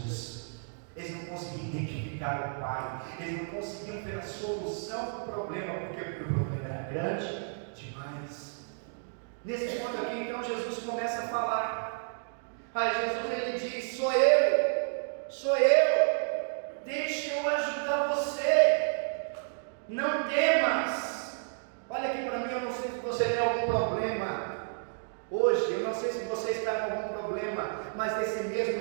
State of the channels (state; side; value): silent; left; digital silence